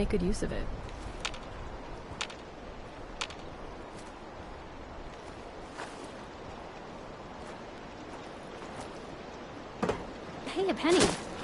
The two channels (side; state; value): both; identical; correlation 1.00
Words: good use of it. Hey, a penny.